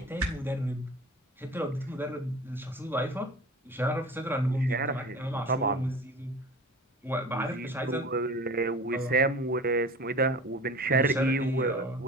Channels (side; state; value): both; normal; correlation 0.39